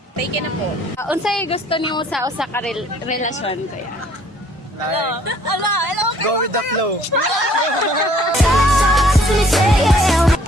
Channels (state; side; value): normal; both; correlation 0.59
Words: Taken na po. Unsay gusto niyo sa usa ka relasyon kaya? Go with the flow.